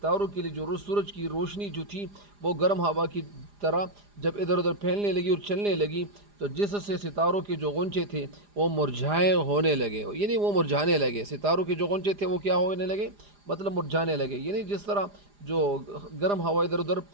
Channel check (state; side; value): late; left; 4.9 ms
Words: کے لیے جو سورج کی روشنی جو تھی وہ گرم ہوا کی طرح جب ادھر ادھر پھیلنے لگی اور چلنے لگی تو جس سے ستاروں کے جو غنچے تھے وہ مرجھائے ہونے لگے، یعنی وہ مرجھانے لگے. ستاروں کے جو غنچے تھے وہ کیا ہونے لگے؟ مطلب مرجھانے لگے. یعنی جس طرح جو گرم ہوا ادھر ادھر